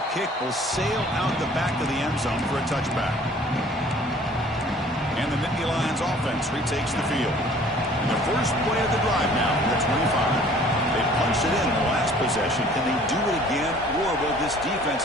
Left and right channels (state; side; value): normal; both; correlation 0.53